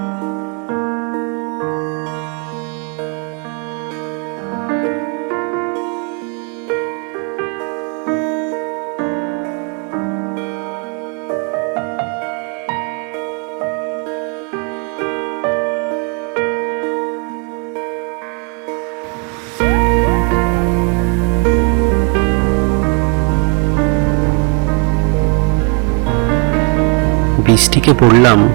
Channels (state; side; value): quieter; left; 37.5 dB